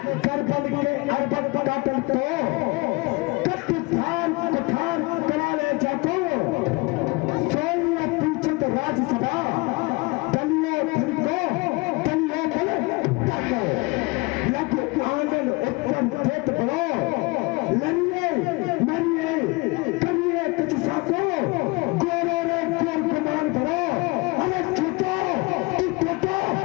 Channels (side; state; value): right; quieter; 25.7 dB